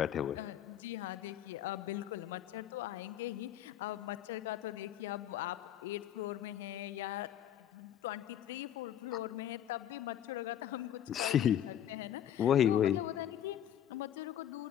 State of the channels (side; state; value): right; quieter; 10.7 dB